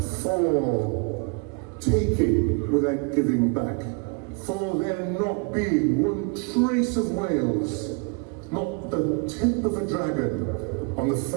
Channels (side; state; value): left; quieter; 32.6 dB